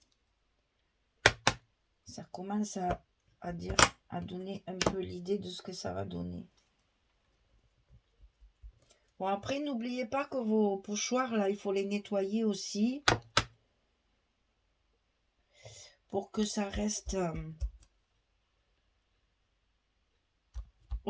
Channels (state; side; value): identical; both; correlation 1.00